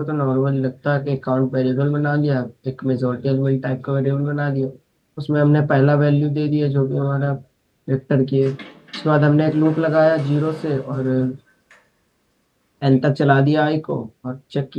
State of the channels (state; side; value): identical; both; correlation 1.00